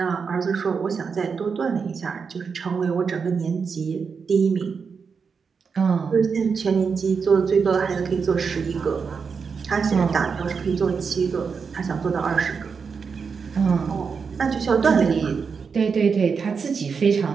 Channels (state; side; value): quieter; left; 5.7 dB